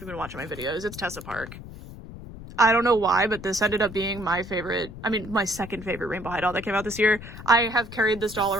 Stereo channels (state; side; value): noise; left; rumble, 13 dB below the sound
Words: been watching my videos. It's Tessa Park. I don't know why, but this ended up being my favorite, my second favorite Rainbow High doll that came out this year. I have carried this doll